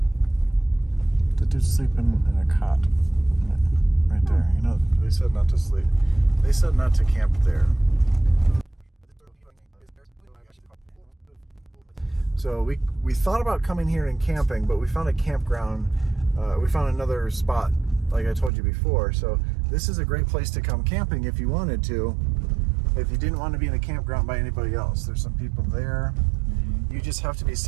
The dude's sleeping in a cot right there. You know, they said not to sleep. They said not to camp there. So we thought about coming here and camping, but we found a campground. We found another spot, like I told you before. So this is a great place to come camping if you wanted to, if you didn't want to be in a campground by anybody else. There's some people there. Mm-hmm. You just have to be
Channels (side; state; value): left; drops out; at 18.5 s